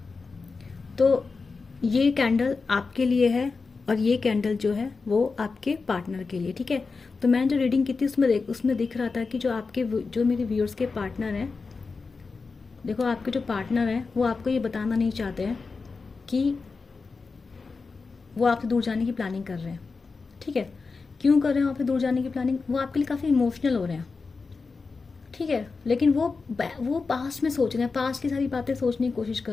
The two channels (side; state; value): right; quieter; 4.4 dB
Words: तो ये कैंडल आपके लिए है और ये कैंडल जो है वो आपके पार्टनर के लिए। ठीक है, तो मैंने जो रीडिंग की थी उसमें दिख रहा था कि जो मेरे व्यूअर्स के पार्टनर हैं, देखो आपके जो पार्टनर हैं वो आपको ये बताना नहीं चाहते हैं कि वो आपसे दूर जाने की प्लानिंग कर रहे हैं। ठीक है, क्यों कर रहे हैं आपसे दूर जाने की प्लानिंग? वो आपके लिए काफ़ी इमोशनल हो रहे हैं। ठीक है, लेकिन वो पास्ट में सोच रहे हैं, पास्ट की सारी बातें सोचने की कोशिश कर